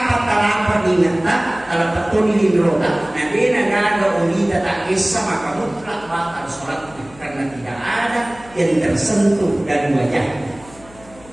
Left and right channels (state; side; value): noise; left; hum, 23 dB below the sound